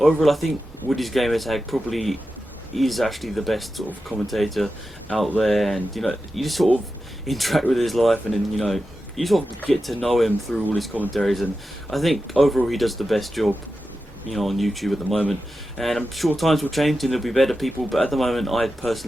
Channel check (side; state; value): both; normal; correlation 0.91